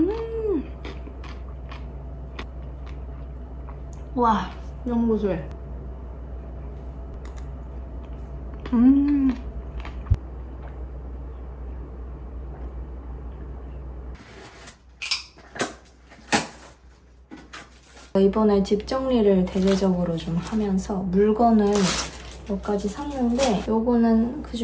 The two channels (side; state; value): both; identical; correlation 1.00